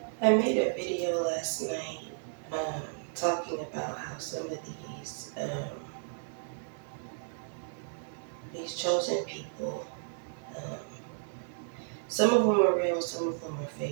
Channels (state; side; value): silent; left; 56 dB below the other